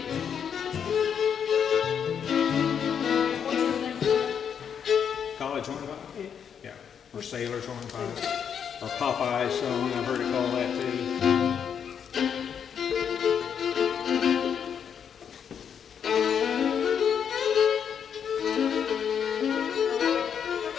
College hornpipe? Yeah. Or sailor's hornpipe. Or Popeye's song, I've heard it called that too.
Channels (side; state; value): right; quieter; 7.8 dB